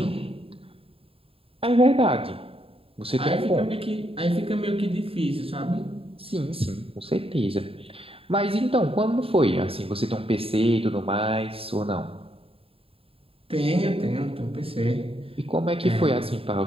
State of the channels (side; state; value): left; late; 0.27 ms